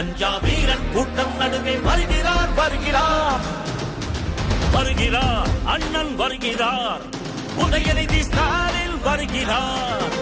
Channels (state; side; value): identical; both; correlation 1.00